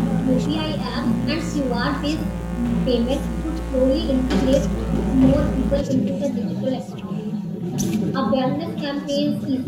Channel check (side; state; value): both; identical; correlation 1.00